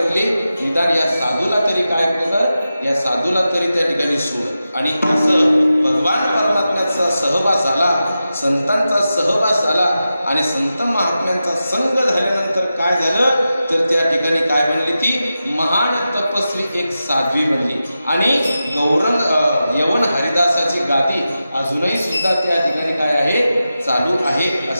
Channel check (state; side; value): inverted; both; correlation -0.92